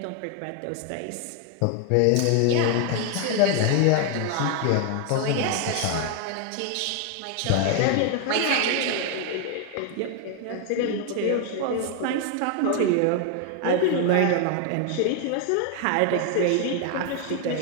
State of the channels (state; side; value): different; both; correlation 0.00